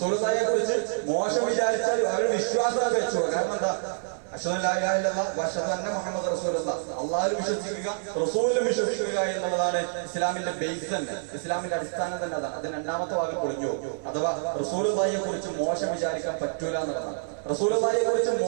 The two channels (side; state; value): left; silent; 60 dB below the other